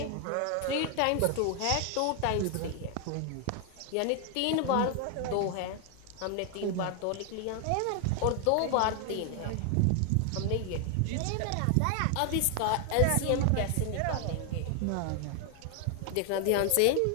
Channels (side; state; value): both; different; correlation 0.00